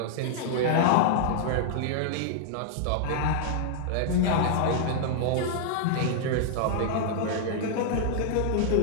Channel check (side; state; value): both; different; correlation -0.01